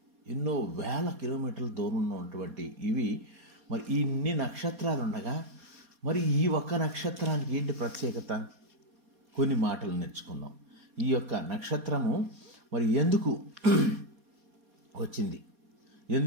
ఎన్నో వేల కిలోమీటర్ల దూరంలో ఉన్నటువంటి ఇవి. మరి ఇన్ని నక్షత్రాలు ఉండగా మరి ఈ ఒక్క నక్షత్రానికి ఏంటి ప్రత్యేకత? కొన్ని మాటలు నేర్చుకుందాం. ఈ యొక్క నక్షత్రము మరి ఎందుకు వచ్చింది,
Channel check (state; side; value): late; left; 4.2 ms